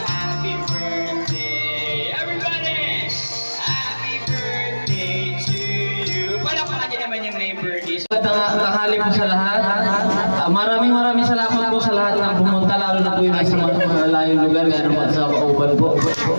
Happy birthday, everybody! Happy birthday to you. Palakpakan niyo naman yung may birthday. Tanghali po sa lahat. Maraming salamat po sa lahat ng pumunta, lalo na po yung nasa mga malayong lugar, kaya naman sa Kauban po.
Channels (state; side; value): inverted; both; correlation -1.00